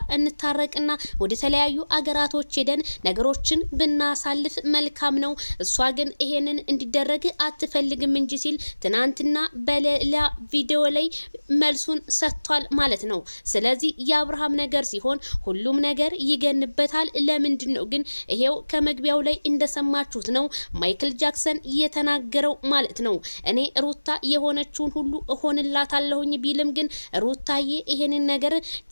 እንታረቅና ወደ ተለያዩ አገራቶች ሄደን ነገሮችን ብናሳልፍ መልካም ነው፣ እሷ ግን ይሄንን እንዲደረግ አትፈልግም እንጂ ሲል ትናንትና በሌላ ቪዲዮ ላይ መልሱን ሰጥቷል ማለት ነው። ስለዚህ የአብርሃም ነገር ሲሆን ሁሉም ነገር ይገንበታል። ለምንድን ነው ግን ይሄው ከመግቢያው ላይ እንደሰማ ማችሁት ነው ማይክል ጃክሰን የተናገረው ማለት ነው። እኔ ሩታ የሆነችውን ሁሉ እሆንላታለሁኝ ቢልም ግን ሩታዬ ይሄንን ነገር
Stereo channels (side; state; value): both; inverted; correlation -1.00